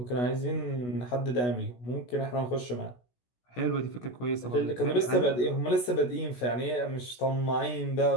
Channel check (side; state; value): right; late; 16 ms